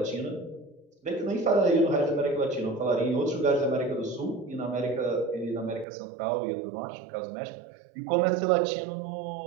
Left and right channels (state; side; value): drops out; left; at 5.9 s